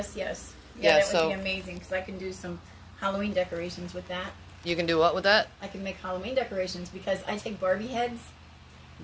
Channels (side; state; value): both; identical; correlation 1.00